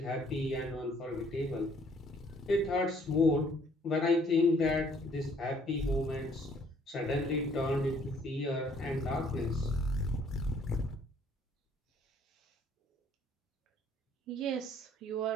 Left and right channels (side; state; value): both; normal; correlation 0.62